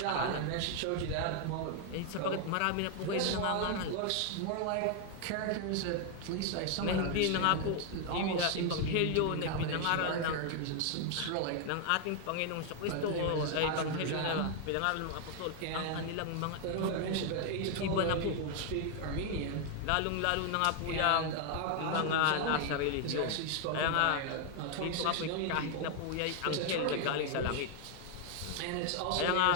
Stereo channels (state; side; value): different; both; correlation 0.00